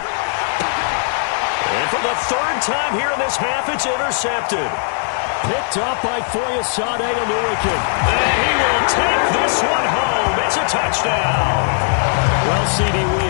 And for the 3rd time here in this half, it's intercepted. Picked up by Foyesade Oluwakin. And he will take this one home. It's a touchdown. Well, CD, we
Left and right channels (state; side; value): silent; right; digital silence